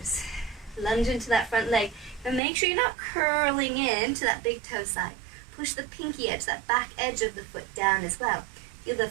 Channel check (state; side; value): drops out; left; at 2.4 s